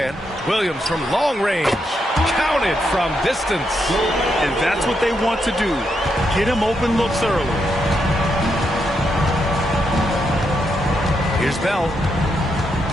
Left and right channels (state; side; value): normal; both; correlation 0.81